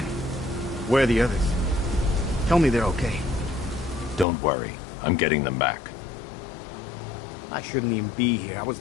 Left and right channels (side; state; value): right; drops out; at 4.2 s